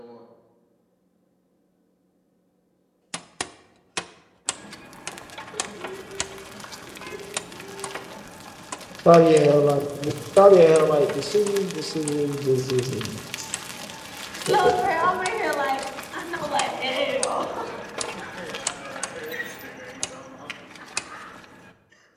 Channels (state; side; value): identical; both; correlation 1.00